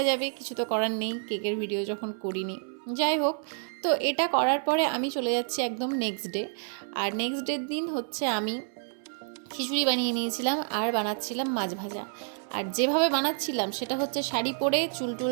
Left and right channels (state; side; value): silent; left; 59 dB below the other